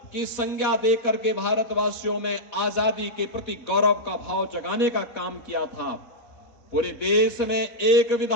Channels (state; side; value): late; right; 4.1 ms